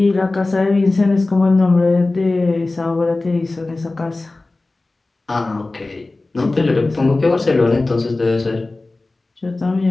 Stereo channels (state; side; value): quieter; right; 3.1 dB